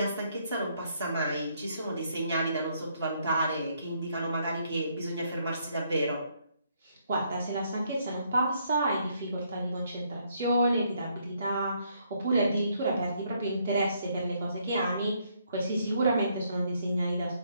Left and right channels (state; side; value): inverted; both; correlation -0.71